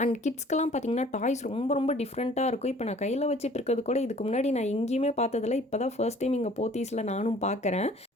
அண்ட் கிட்ஸ்க்கெல்லாம் பார்த்தீங்கன்னா, டாய்ஸ் ரொம்ப ரொம்ப டிஃப்ரெண்ட்டா இருக்கும். இப்போ நான் கையில வச்சுட்டு இருக்கிறது கூட இதுக்கு முன்னாடி நான் எங்கேயுமே பார்த்ததில்ல. இப்போ தான் ஃபர்ஸ்ட் டைம் இங்க போத்தீஸ்ல நானும் பார்க்குறேன்.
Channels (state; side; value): normal; both; correlation 0.52